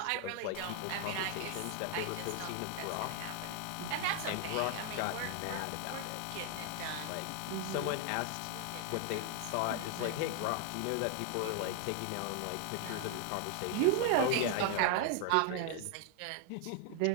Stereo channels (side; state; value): both; different; correlation 0.00